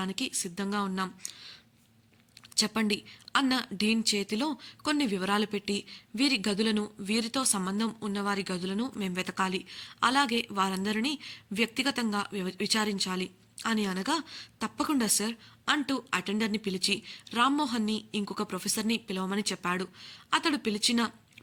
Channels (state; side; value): identical; both; correlation 1.00